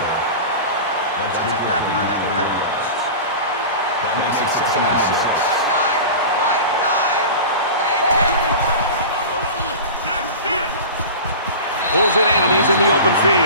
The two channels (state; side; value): inverted; both; correlation -0.32